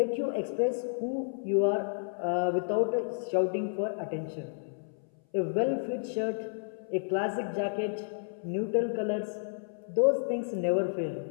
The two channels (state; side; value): silent; right; 57 dB below the other